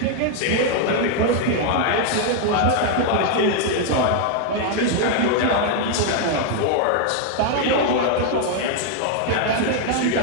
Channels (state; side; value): different; both; correlation 0.00